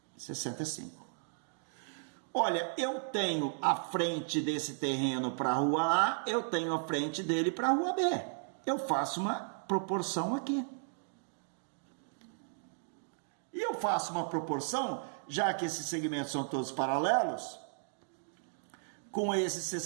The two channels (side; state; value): left; silent; digital silence